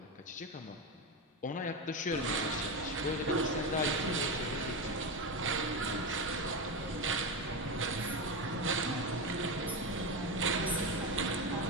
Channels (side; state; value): both; normal; correlation 0.15